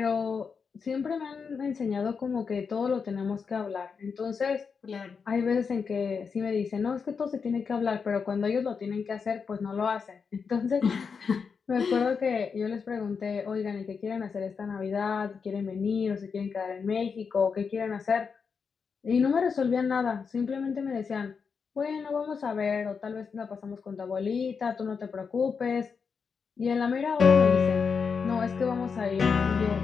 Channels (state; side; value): quieter; right; 5.7 dB